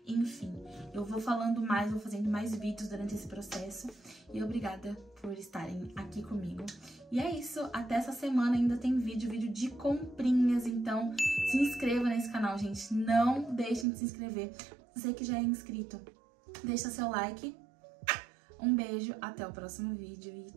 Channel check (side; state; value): left; drops out; at 13.9 s